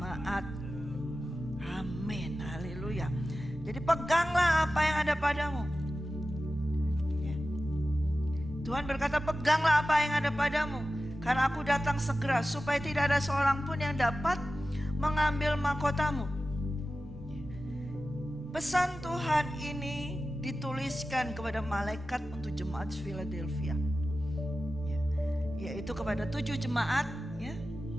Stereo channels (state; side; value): normal; both; correlation 0.94